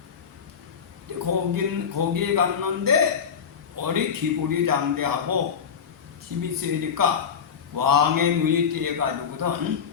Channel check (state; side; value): quieter; right; 7.1 dB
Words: 거기에 갔는데 어리 기골이 장대하고 힘이 세니까 왕의 눈이 띄어가지고선